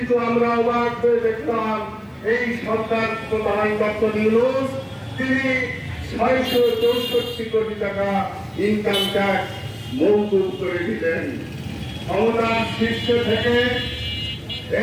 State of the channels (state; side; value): identical; both; correlation 1.00